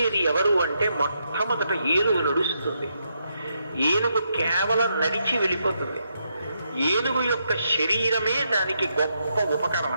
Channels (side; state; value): both; inverted; correlation -0.80